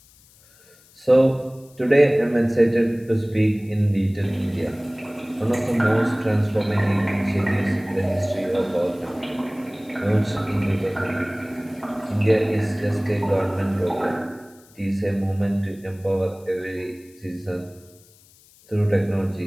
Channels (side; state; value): left; noise; hiss, 28 dB below the sound